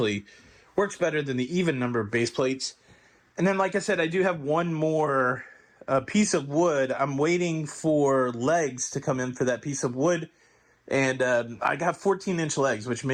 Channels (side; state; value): both; identical; correlation 1.00